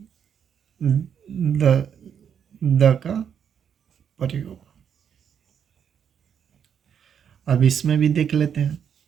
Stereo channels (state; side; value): quieter; left; 8.1 dB